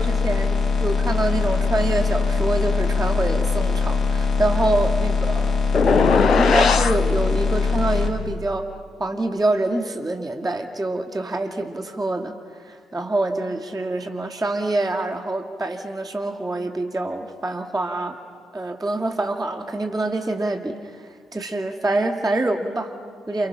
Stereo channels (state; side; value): normal; both; correlation 0.83